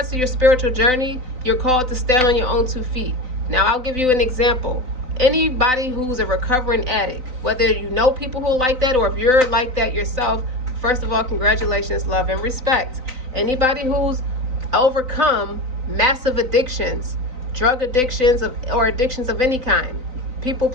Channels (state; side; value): late; left; 3.9 ms